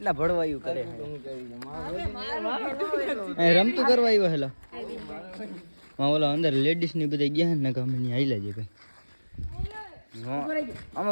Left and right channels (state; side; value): inverted; both; correlation -1.00